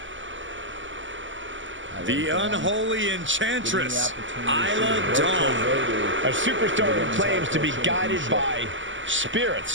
The unholy enchantress, Isla Dawn. A superstar who claims to be guided by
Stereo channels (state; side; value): late; left; 0.55 ms